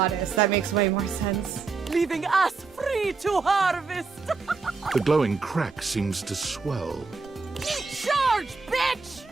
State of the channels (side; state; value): left; quieter; 4.5 dB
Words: That makes way more sense. Leaving us free to harvest. The glowing crack seems to swell. Charge, bitch!